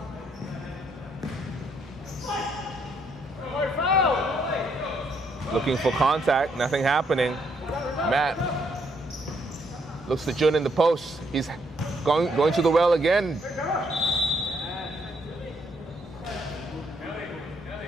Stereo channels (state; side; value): normal; both; correlation 0.72